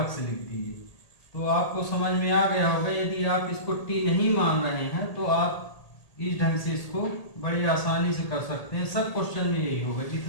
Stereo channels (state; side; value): late; right; 1.8 ms